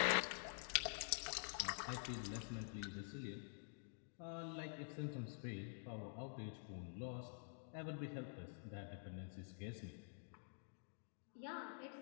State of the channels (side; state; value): right; silent; digital silence